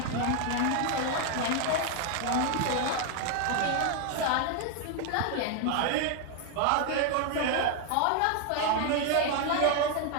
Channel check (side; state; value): both; different; correlation 0.01